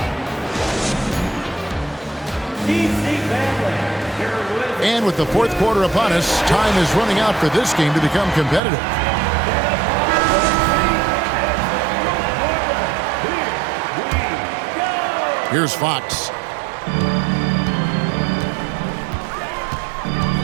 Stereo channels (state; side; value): drops out; left; at 8.6 s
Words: And with the fourth quarter upon us, time is running out for this game to become competitive. Here's Fox.